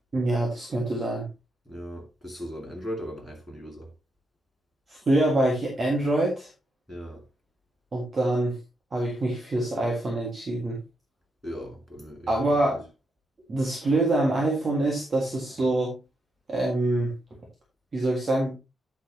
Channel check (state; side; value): normal; both; correlation 0.81